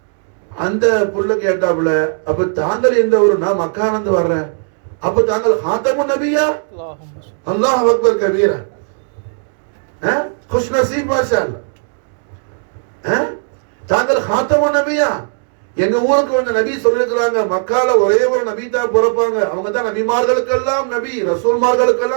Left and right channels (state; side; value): silent; left; digital silence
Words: அந்த புள்ள கேட்டாப்புல அப்ப தாங்கள் எந்த ஊரு? நான் மக்கானந்து வர்றேன். அப்ப தாங்கள் ஹாத்தமுன் நபியா? அல்லாஹ் அக்பர் கபீரா. खुश नसीब माशाअल्लाह. தாங்கள் ஹாத்தமுன் நபியா? எங்க ஊருக்கு வந்த நபி சொல்லிருக்கிறாங்க மக்கால ஒரே ஒரு நபி தான் பிறப்பாங்க, அவங்க தான் நபிமார்களுக்கெல்லாம் நபி,